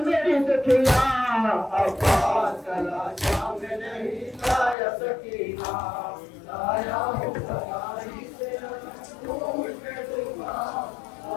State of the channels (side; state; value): right; drops out; at 4.8 s